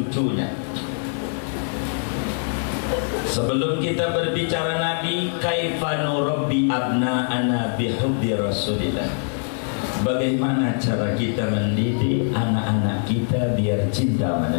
Sebelum kita berbicara Nabi, kaifa nurabbi abna'ana bihubbi Rasulillah. Bagaimana cara kita mendidik anak-anak kita biar cinta sama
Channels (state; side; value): silent; right; digital silence